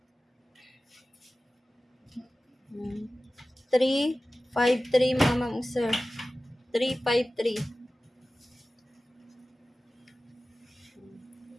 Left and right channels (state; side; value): normal; both; correlation 0.96